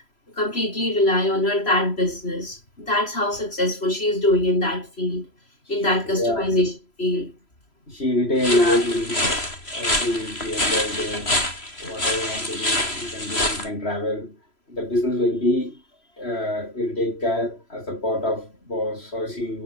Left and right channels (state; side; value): late; right; 3.0 ms